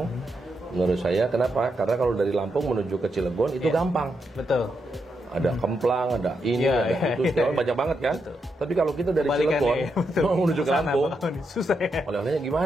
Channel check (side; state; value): both; normal; correlation 0.83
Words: menurut saya. Kenapa? Karena kalau dari Lampung menuju ke Cilegon itu gampang. Betul. Ada Kemplang, ada ini, ada itu, banyak banget kan. Tapi kalau kita dari Cilegon mau menuju ke Lampung, susah ya. Oleh-olehnya